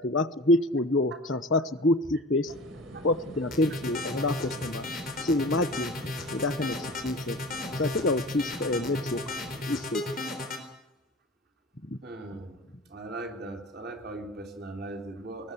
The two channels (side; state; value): both; normal; correlation 0.37